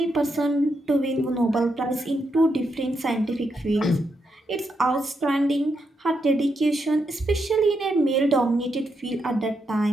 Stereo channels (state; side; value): normal; both; correlation 0.82